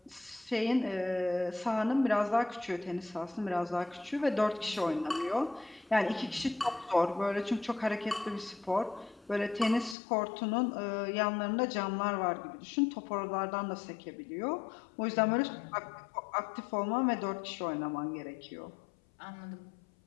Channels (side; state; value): right; drops out; at 10.0 s